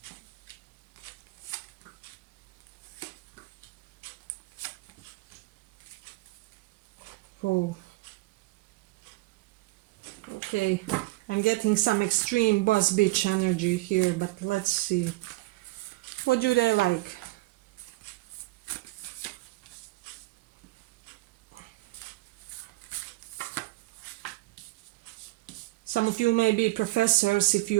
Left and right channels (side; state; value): left; quieter; 20.4 dB